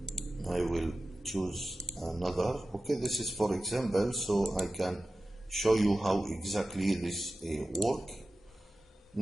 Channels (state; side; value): normal; both; correlation 0.94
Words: I will choose another. Okay, this is for example, so I can show you how exactly this work.